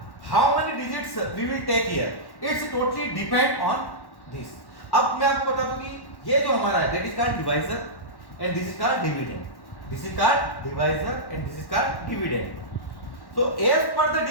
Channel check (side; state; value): right; late; 1.1 ms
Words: how many digits we will take here? It's totally depend on this. अब मैं आपको बता दूं कि ये जो हमारा है, that is called divisor and this is called dividend. This is called divisor and this is called dividend. So as per the